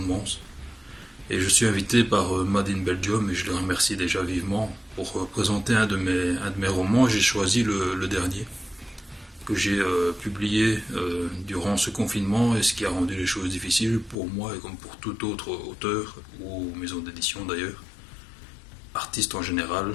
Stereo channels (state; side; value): drops out; right; at 14.2 s